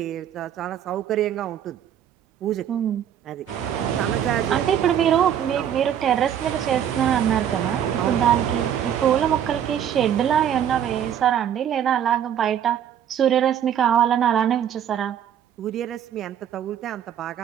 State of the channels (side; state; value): left; quieter; 9.6 dB